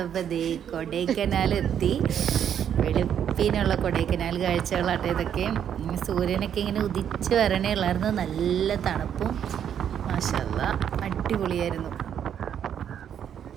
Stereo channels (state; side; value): quieter; left; 9.1 dB